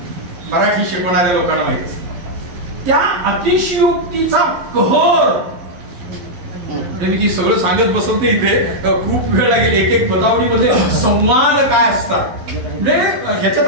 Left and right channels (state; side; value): late; left; 11 ms